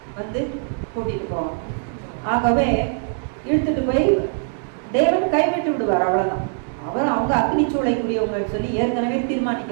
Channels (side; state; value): left; silent; 59 dB below the other